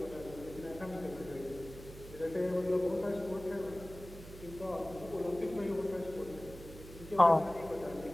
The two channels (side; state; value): right; noise; hum, 15 dB below the sound